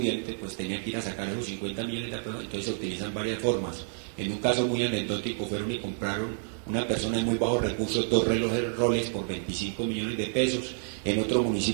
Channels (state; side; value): silent; left; 58 dB below the other